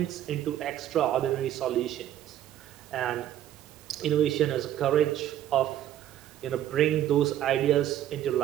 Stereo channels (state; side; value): quieter; left; 11.7 dB